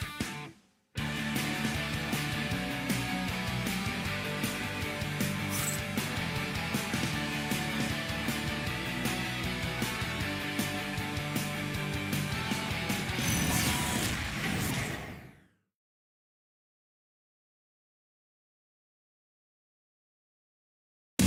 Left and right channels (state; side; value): identical; both; correlation 1.00